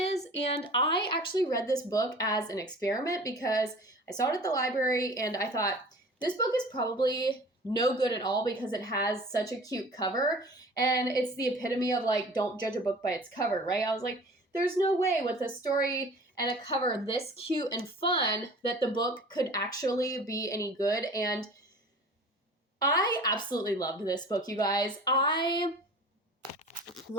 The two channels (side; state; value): both; normal; correlation 0.43